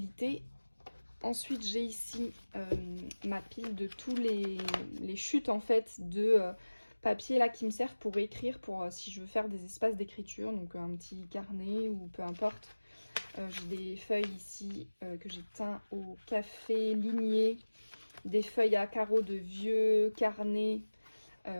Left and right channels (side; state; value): both; inverted; correlation -1.00